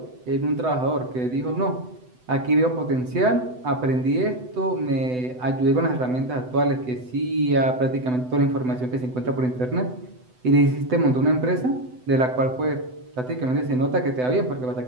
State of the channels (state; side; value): late; left; 7.9 ms